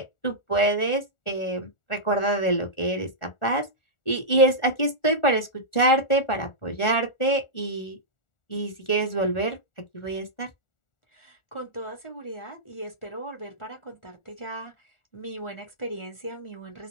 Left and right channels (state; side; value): late; right; 1.4 ms